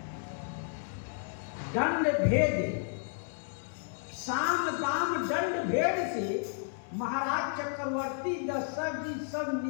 दंड भेद साम दाम दंड भेद से महाराज चक्रवर्ती दशरथ जी सब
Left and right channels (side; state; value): right; silent; 56 dB below the other